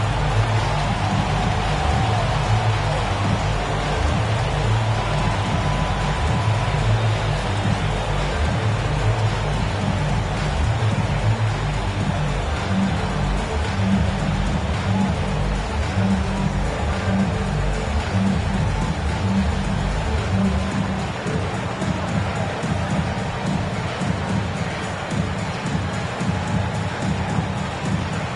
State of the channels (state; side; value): identical; both; correlation 1.00